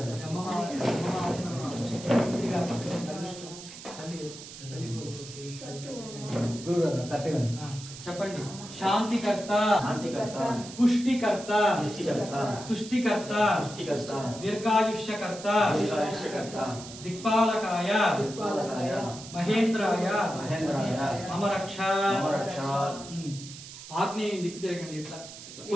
చెప్పండి. శాంతికర్త, పుష్టికర్త, తుష్టికర్త, దీర్ఘాయుష్యకర్త, దిక్పాలకాయ, మహేంద్రాయ, మమ రక్ష. ఆగ్నేయం దిక్కు తిరగండి. ఇట్లా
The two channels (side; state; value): right; noise; hiss, 14 dB below the sound